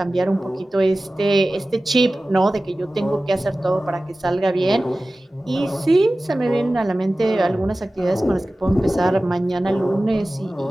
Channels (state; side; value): normal; both; correlation 0.96